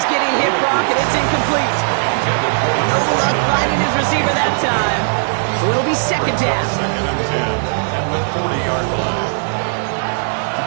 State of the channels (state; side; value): silent; left; 62 dB below the other